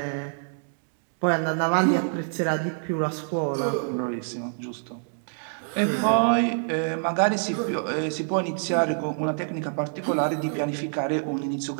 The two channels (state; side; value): silent; left; digital silence